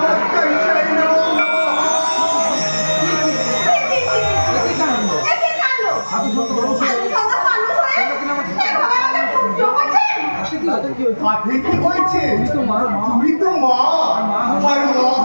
আপনি কি হয়েছে? তুমি তো মা, আর মা হলো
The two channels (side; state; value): both; inverted; correlation -1.00